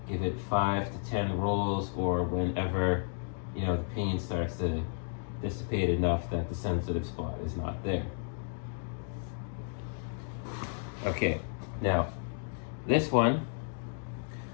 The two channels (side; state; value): right; silent; 56 dB below the other